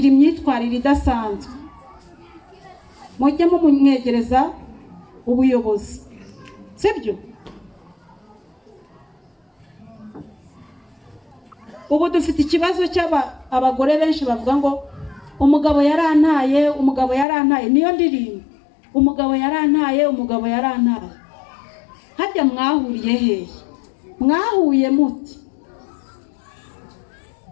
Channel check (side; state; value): right; drops out; at 17.2 s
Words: imyitwarire idasanzwe, mujye mumwegereza ubuyobozi, sibyo? Ubu dufite ikibazo cy'abagore benshi bavuga ngo umugabo yarantaye, niyo ndirimbo, umugabo yarantaye. Harya mwahuriye hehe? Mwahuye muti?